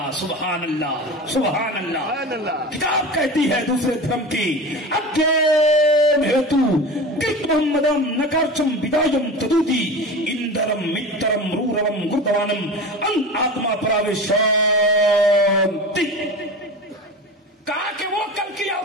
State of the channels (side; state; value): both; normal; correlation 0.31